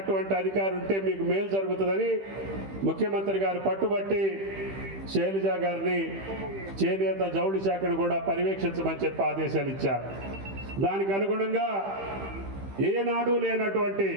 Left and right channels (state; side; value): late; left; 15 ms